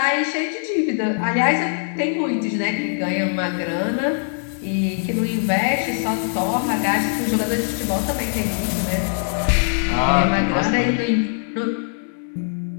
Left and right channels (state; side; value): silent; right; digital silence